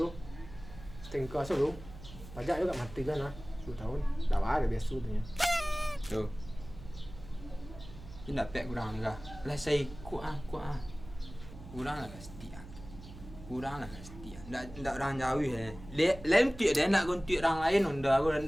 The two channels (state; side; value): noise; right; hum, 15 dB below the sound